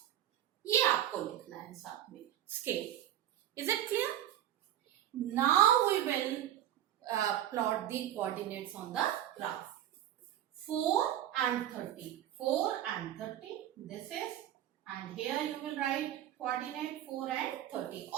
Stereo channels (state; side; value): quieter; left; 12.1 dB